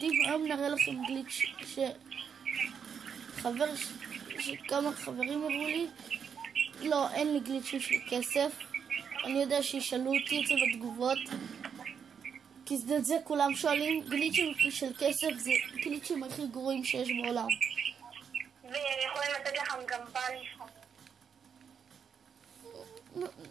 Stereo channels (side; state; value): left; quieter; 7.1 dB